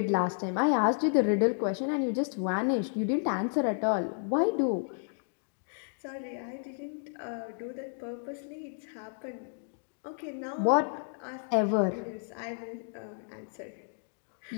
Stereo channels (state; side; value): silent; right; digital silence